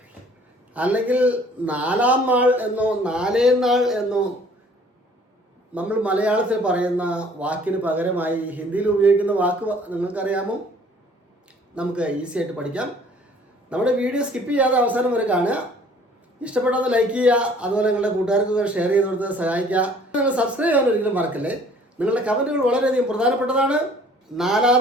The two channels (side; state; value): both; normal; correlation 0.55